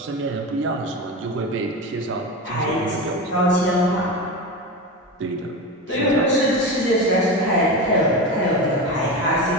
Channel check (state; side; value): normal; both; correlation 0.22